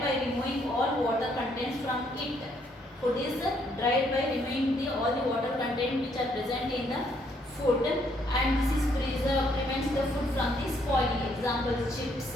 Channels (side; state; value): both; normal; correlation 0.70